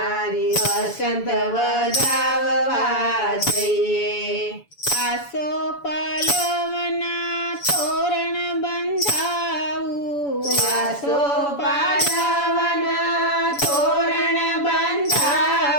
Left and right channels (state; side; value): late; right; 7.0 ms